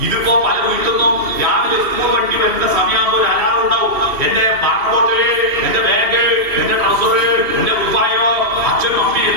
ഇതിപ്പോ പല വീട്ടുന്നു. രാവിലെ സ്കൂൾ വണ്ടി വരുന്ന സമയമാകുമ്പോൾ ഒരു അലാറം ഉണ്ടാവും. എന്റെ വാട്ടർ ബോട്ടില്, എന്റെ ബാഗ്, എന്റെ ട്രൗസറ്, എന്റെ കുപ്പായോ, അച്ഛനും അമ്മയും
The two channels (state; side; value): late; left; 2.7 ms